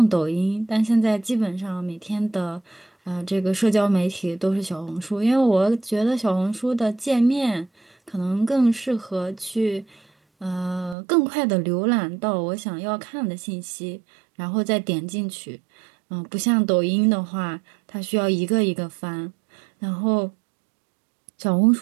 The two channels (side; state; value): left; drops out; at 11.0 s